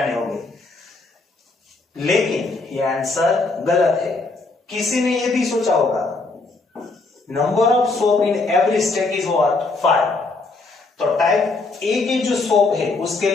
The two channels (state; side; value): quieter; right; 3.5 dB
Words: होंगे। लेकिन ये आंसर गलत है। किसी ने ये भी सोचा होगा number of soap in every step is what 5। तो टाइप ए की जो सोप है उसके